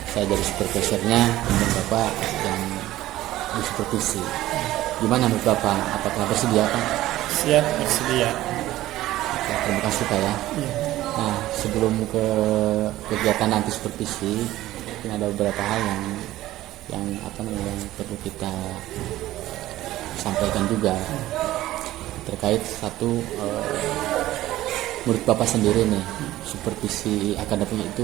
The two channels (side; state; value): left; quieter; 15.4 dB